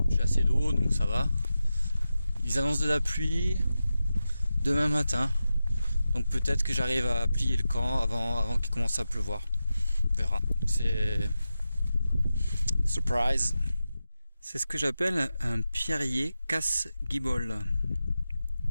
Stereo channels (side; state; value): both; inverted; correlation -0.92